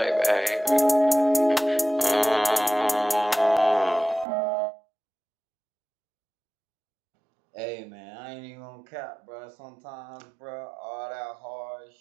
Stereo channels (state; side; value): drops out; left; at 4.2 s